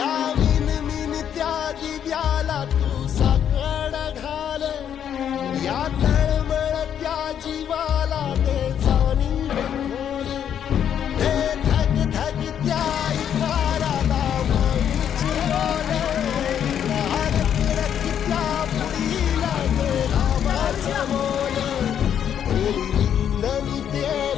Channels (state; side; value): quieter; right; 9.1 dB